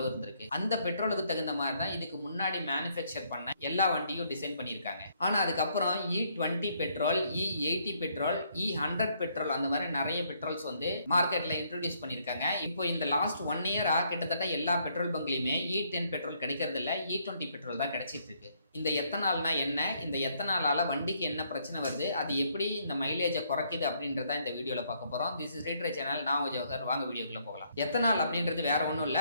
இருந்திருக்கு. அந்த பெட்ரோலுக்கு தகுந்த மாதிரி தான் இதுக்கு முன்னாடி மேனுஃபேக்சர் பண்ண எல்லா வண்டியும் டிசைன் பண்ணியிருக்காங்க. ஆனா அதுக்கப்புறம் E20 petrol, E80 petrol, E100 petrol அந்த மாதிரி நிறைய பெட்ரோல்ஸ் வந்து மார்க்கெட்ல இன்ட்ரோடியூஸ் பண்ணிருக்காங்க. இப்போ இந்த லாஸ்ட் 1 இயரா கிட்டத்தட்ட எல்லா பெட்ரோல் பங்க்லயுமே E10 பெட்ரோல் கிடைக்கிறது இல்ல, E20 பெட்ரோல் தான் கிடைச்சிட்டு இருக்கு. இந்த எத்தனால்னா என்ன, இந்த எத்தனாலால வண்டிக்கு என்ன பிரச்சனை வருது, அது எப்படி இந்த மைலேஜை குறைக்குது அப்படின்றத இந்த வீடியோல பார்க்க போறோம். திஸ் இஸ் ரீட்ரே சேனல், நான் ஜோஹர். வாங்க வீடியோக்குள்ள போகலாம். எத்தனால் அப்படின்றது வேற ஒன்றும் இல்ல,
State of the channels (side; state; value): both; inverted; correlation -0.70